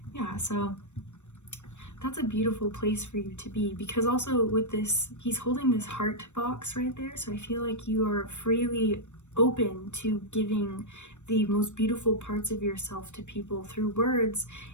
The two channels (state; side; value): late; right; 0.84 ms